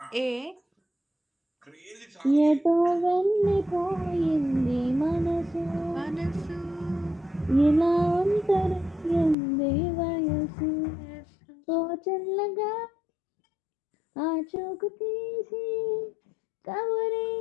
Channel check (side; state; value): right; drops out; at 9.3 s